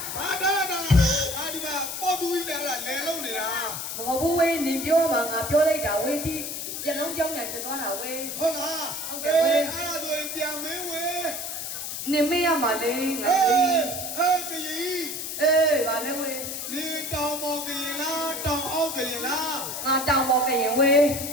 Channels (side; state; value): left; noise; hiss, 5 dB below the sound